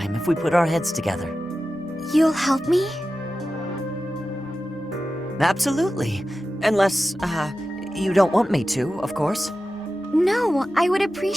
if we put our heads together. You'll help me? Absolutely. Unless, you don't want me to, of course. No, I would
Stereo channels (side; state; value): both; normal; correlation 0.93